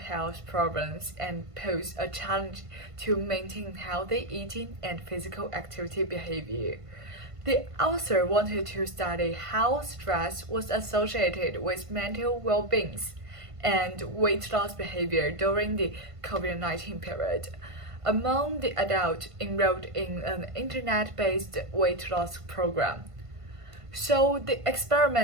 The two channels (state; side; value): late; left; 1.5 ms